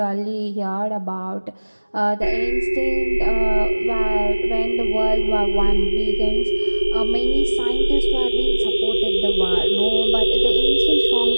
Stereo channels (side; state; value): both; inverted; correlation -1.00